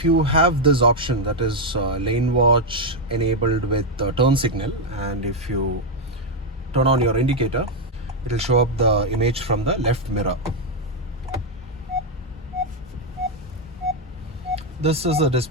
you have this option, that is lane watch enabled with turn signal, and if you turn on your indicator, it will show up the image from the left mirror. This is a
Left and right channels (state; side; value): normal; both; correlation 0.02